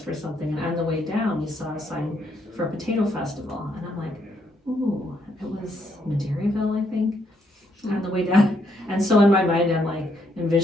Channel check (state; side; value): normal; both; correlation 0.74